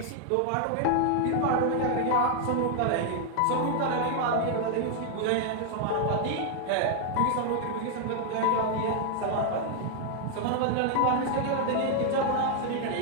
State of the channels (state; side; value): different; both; correlation 0.00